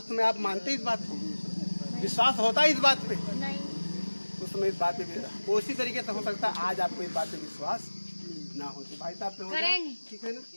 समय आप मानते इस बात को? विश्वास होता है इस बात पे? उस समय इस बात पे उसी तरीके से हो सकता है आज आपको इस बात पे विश्वास ना हो, तो भाई साहब पे हो जाए, ठीक है ना?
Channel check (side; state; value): both; inverted; correlation -1.00